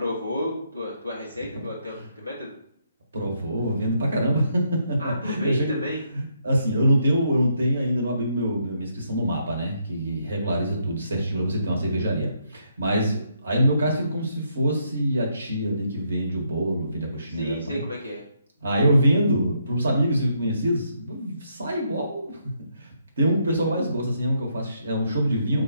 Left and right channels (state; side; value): inverted; both; correlation -0.75